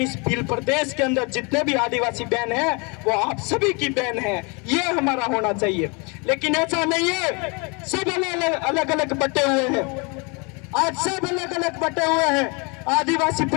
इस भील प्रदेश के अंदर जितने भी आदिवासी बहन है वो आप सभी की बहन है, ये हमारा होना चाहिए। लेकिन ऐसा नहीं है, सब अलग अलग बटे हुए हैं। आज सब अलग अलग बटे हुए हैं। आदिवासी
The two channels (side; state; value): right; quieter; 30.7 dB